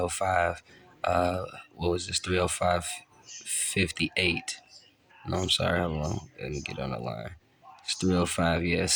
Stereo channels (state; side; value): identical; both; correlation 1.00